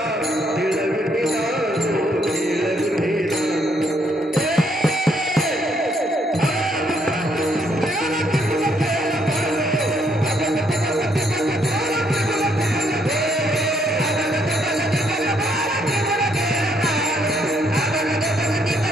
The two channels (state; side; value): normal; both; correlation 0.71